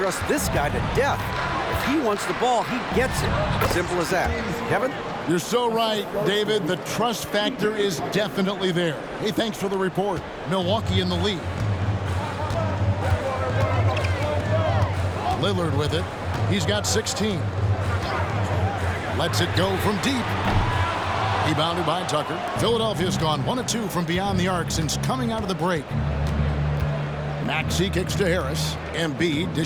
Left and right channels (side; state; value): both; identical; correlation 1.00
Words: this guy to death. If he wants the ball, he gets it. Simple as that. Kevin? You're so right, David. The trust factor is definitely there. Hey, thanks for the report. Milwaukee in the lead. Lillard with it. He's got 16. Lets it go from deep. Rebounded by Tucker. Philadelphia's gone 1 of 2 from beyond the arc since coming out of the break. Maxey kicks to Harris. Embiid